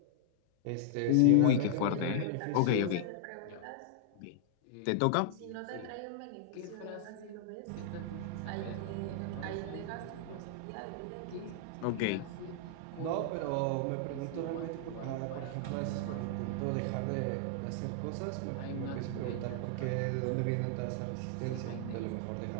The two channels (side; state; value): both; different; correlation -0.01